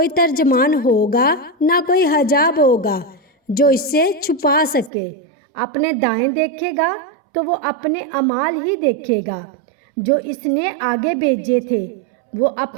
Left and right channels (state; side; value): drops out; left; at 4.9 s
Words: ترجمان ہوگا نہ کوئی حجاب ہوگا جو اس سے چھپا سکے۔ اپنے دائیں دیکھے گا تو وہ اپنے اعمال ہی دیکھے گا جو اس نے آگے بھیجے تھے، وہ